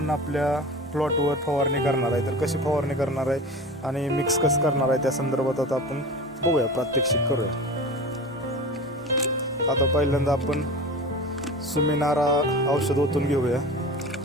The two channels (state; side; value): normal; both; correlation 0.33